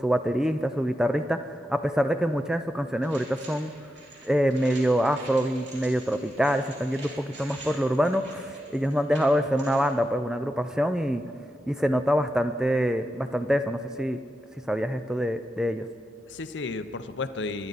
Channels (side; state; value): both; normal; correlation 0.87